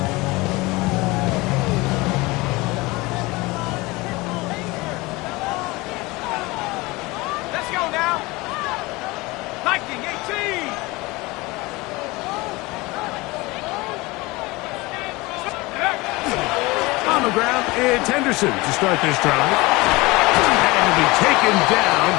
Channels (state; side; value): quieter; right; 22.6 dB